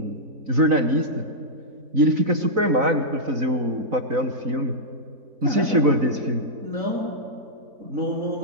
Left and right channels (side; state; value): left; late; 4.0 ms